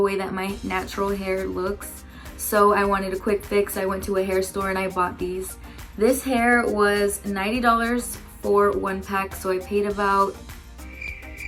way that my natural hair looks, so I wanted a quick fix. I went to a hair store and I bought these. This hair was $90 for 1 pack, so I paid about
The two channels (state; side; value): identical; both; correlation 1.00